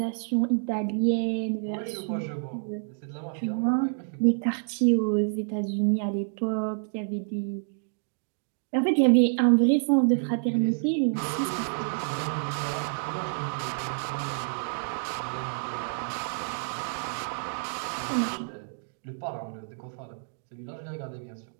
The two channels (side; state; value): left; silent; digital silence